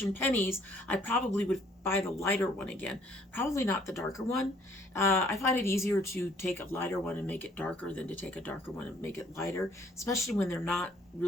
pennies, I probably would buy the lighter one again. Probably not the darker one. I find it easier to take a lighter one and make it darker than to take a darker one and make it lighter, especially when they're not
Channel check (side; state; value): both; normal; correlation 0.61